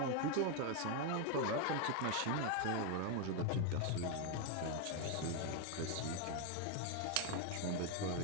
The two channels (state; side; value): different; both; correlation 0.01